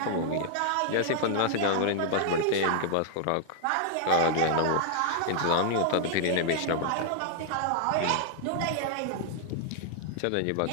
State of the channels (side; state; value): both; different; correlation -0.01